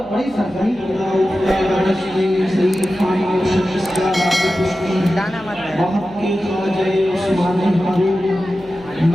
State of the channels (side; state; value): left; noise; hum, 23 dB below the sound